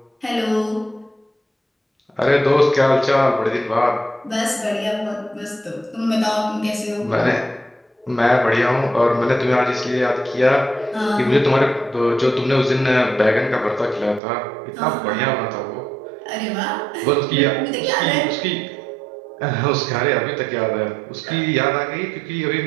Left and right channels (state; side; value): drops out; left; at 14.2 s